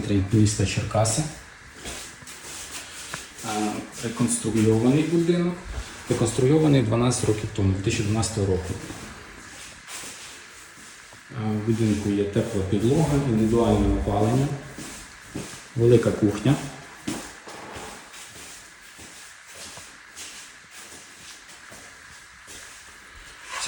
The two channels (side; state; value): both; identical; correlation 1.00